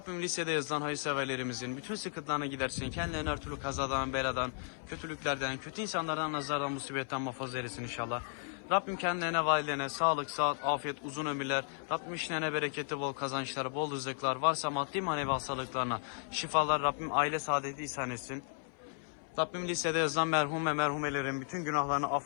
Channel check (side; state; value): right; silent; 55 dB below the other